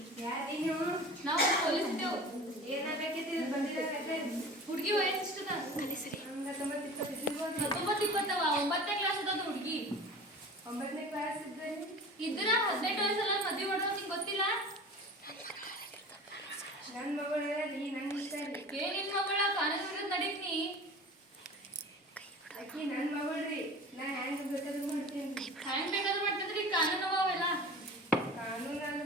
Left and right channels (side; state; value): both; normal; correlation 0.38